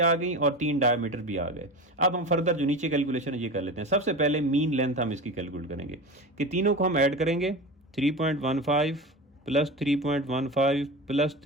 गई और 3 डायमीटर भी आ गए। अब हम फर्दर जो नीचे कैलकुलेशन ये कर लेते हैं। सबसे पहले मीन लेंथ हम इसकी कैलकुलेट करेंगे कि तीनों को हम ऐड करेंगे, 3.15 प्लस 3.15 प्लस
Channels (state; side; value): normal; both; correlation 0.28